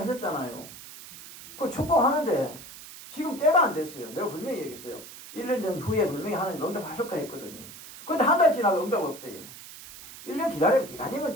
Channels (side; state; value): right; noise; hiss, 15 dB below the sound